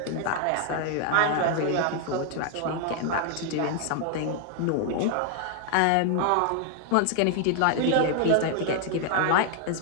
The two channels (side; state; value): both; different; correlation 0.00